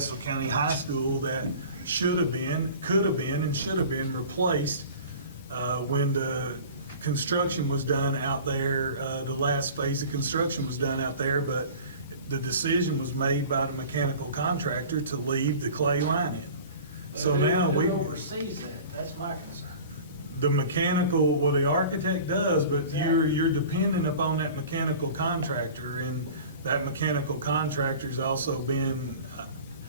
County High School that should have been, could have been, and should have been replaced when the construction was done out there, the last phase of construction was done out there, but the decision was made by the mechanical contractor to leave the clay line in. So now Who oversees that? That's my concern. The mechanical, well, the architect does, but you're dependent upon that mechanical contractor, and that mechanical contractor's also been,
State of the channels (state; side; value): inverted; both; correlation -0.41